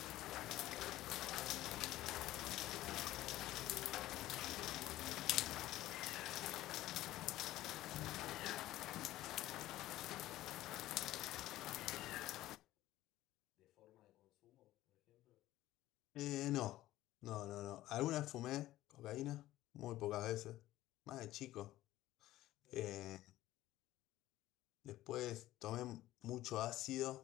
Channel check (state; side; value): quieter; right; 15.4 dB